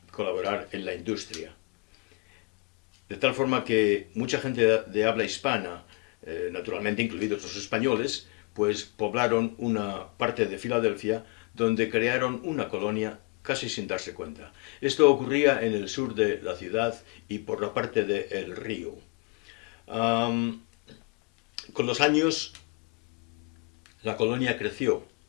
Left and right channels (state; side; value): quieter; right; 29.8 dB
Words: colaborar en la industria. De tal forma que mucha gente de habla hispana, naturalmente incluidos los españoles, pues poblaron una parte de Filadelfia donde crearon una colonia casi sin darse cuenta. Esto ocurría en el sur de la ciudad y por la parte del río. Con los años la colonia creció.